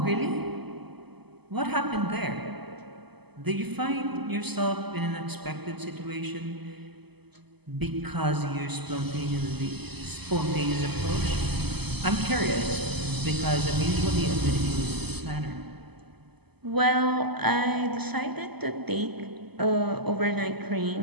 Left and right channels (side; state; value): left; late; 0.98 ms